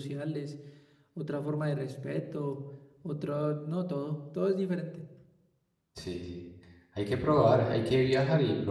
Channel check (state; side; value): identical; both; correlation 1.00